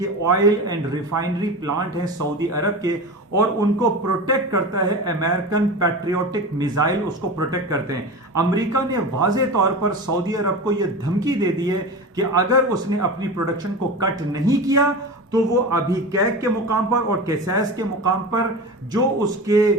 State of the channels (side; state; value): both; normal; correlation 0.28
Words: ऑयल एंड रिफाइनरी प्लांट हैं सऊदी अरब के, और उनको प्रोटेक्ट करता है अमेरिकन पैट्रियोटिक मिसाइल, उसको प्रोटेक्ट करते हैं। अमेरिका ने वाजे तौर पर सऊदी अरब को यह धमकी दे दी है कि अगर उसने अपनी प्रोडक्शन को कट नहीं किया तो वो अभी कैक के मुकाम पर और कैसास के मुकाम पर जो